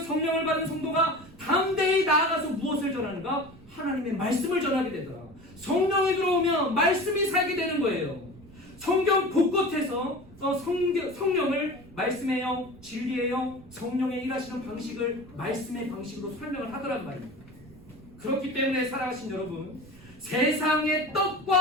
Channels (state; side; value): noise; right; rumble, 22 dB below the sound